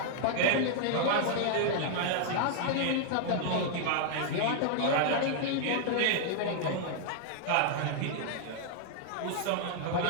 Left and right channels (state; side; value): different; both; correlation -0.01